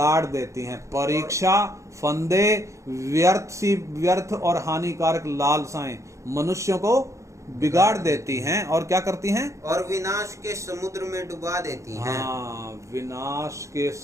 देती हैं। परीक्षा, फंदे, व्यर्थ और हानिकारक लालसाएं मनुष्यों को बिगाड़ देती हैं और क्या करती हैं? और विनाश के समुद्र में डुबा देती हैं। हाँ, विनाश के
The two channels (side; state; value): left; late; 0.15 ms